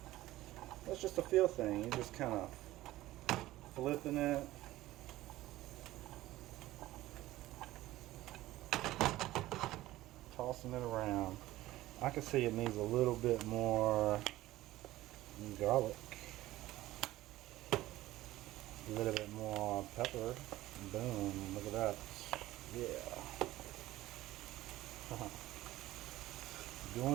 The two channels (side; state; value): left; quieter; 16.4 dB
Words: That's just a feel thing. You just kind of flipping it. Tossing it around. I can see it needs a little bit more garlic. A little bit more pepper. Boom, look at that. Yeah.